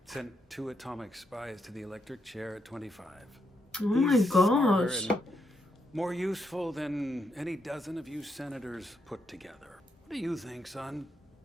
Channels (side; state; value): both; normal; correlation 0.79